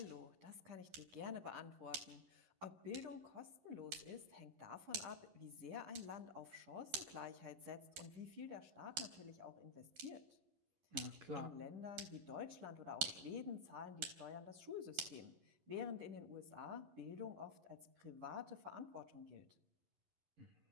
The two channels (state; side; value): late; left; 11 ms